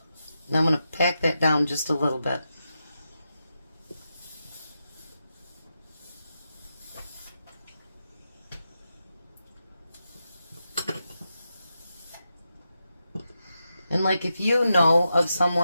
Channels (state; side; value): inverted; both; correlation -0.88